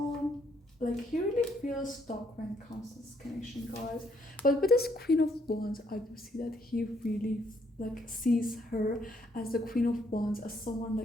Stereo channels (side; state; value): both; normal; correlation 0.71